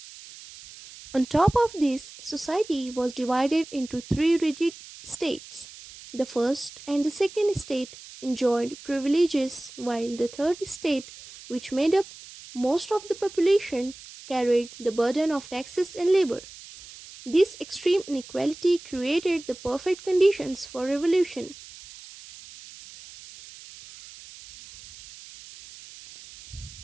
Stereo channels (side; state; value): right; noise; hiss, 17 dB below the sound